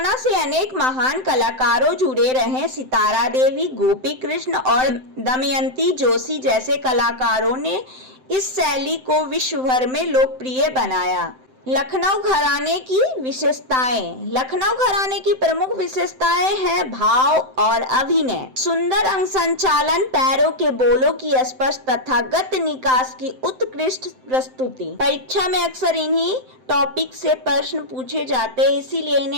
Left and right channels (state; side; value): late; left; 7.8 ms